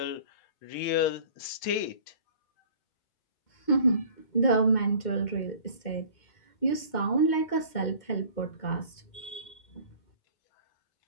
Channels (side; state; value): right; late; 2.1 ms